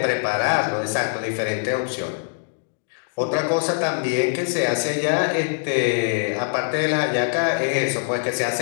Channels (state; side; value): silent; right; digital silence